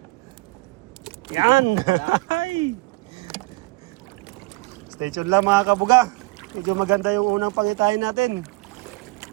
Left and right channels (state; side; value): quieter; left; 24.1 dB